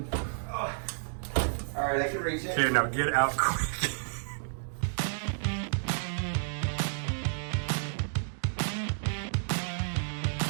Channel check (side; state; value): left; silent; digital silence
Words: Oh. Alright, I can reach it. Okay, now get out quick.